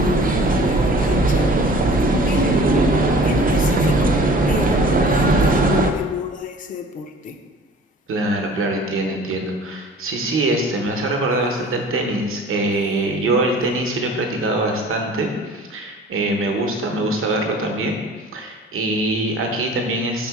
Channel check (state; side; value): normal; both; correlation 0.47